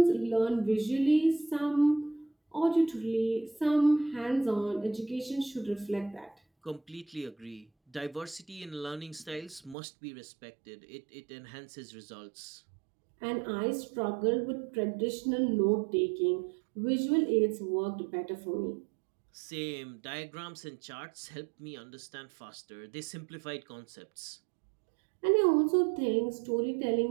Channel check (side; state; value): left; drops out; at 9.8 s